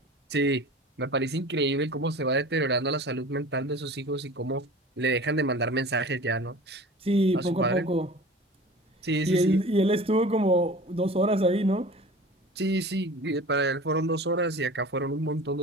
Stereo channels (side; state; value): both; normal; correlation 0.40